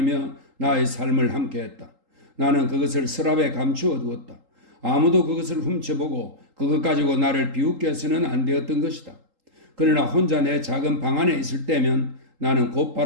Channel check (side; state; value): left; late; 3.8 ms